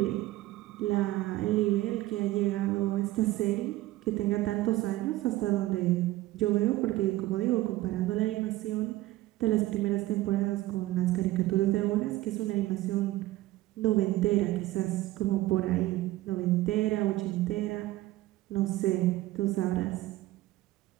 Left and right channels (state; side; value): quieter; left; 17.1 dB